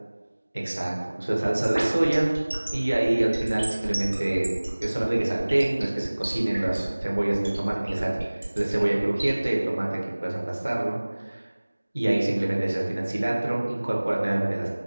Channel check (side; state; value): both; inverted; correlation -1.00